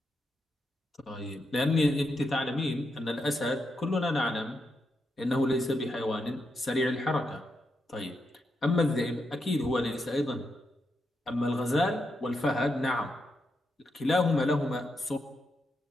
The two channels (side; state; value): both; normal; correlation 0.83